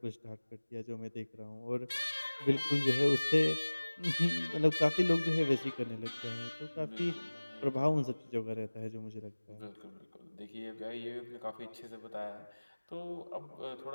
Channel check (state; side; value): inverted; both; correlation -1.00